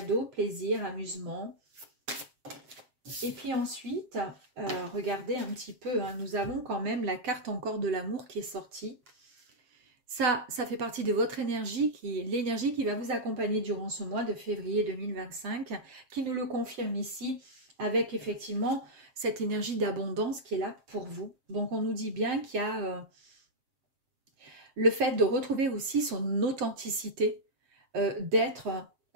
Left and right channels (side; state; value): left; late; 7.6 ms